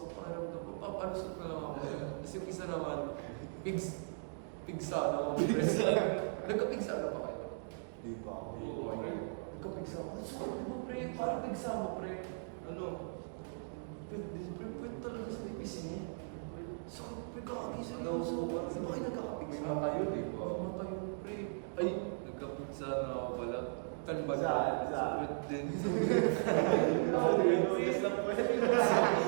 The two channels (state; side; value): silent; left; digital silence